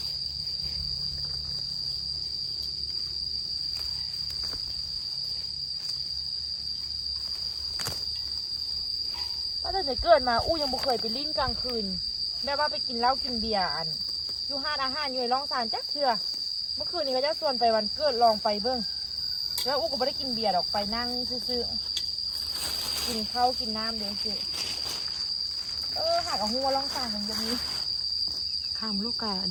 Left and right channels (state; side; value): identical; both; correlation 1.00